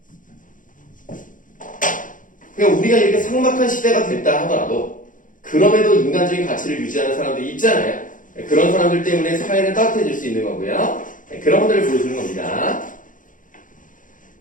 그러니까 우리가 이렇게 삭막한 시대가 됐다 하더라도 그럼에도 인간적인 가치를 유지하는 사람들이 있잖아요. 그런 사람들 때문에 사회는 따뜻해질 수 있는 거고요. 그런 것들을 보여주는 겁니다.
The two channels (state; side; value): late; right; 0.38 ms